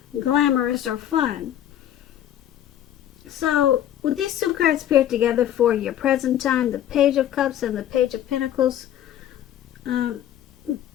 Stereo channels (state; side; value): quieter; right; 11.4 dB